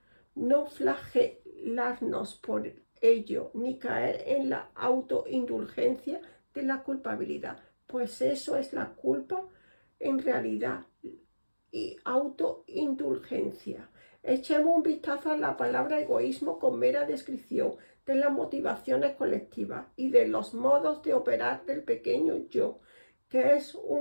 no flagelarnos por ello, ni caer en la autoindulgencia de la culpabilidad, pues eso es la culpa en realidad y autoindulgencia. Echemos un vistazo a la palabra egoísmo con mera descripción de las motivaciones colectivas y de los modos de operar del pequeño yo, que es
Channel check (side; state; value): both; inverted; correlation -1.00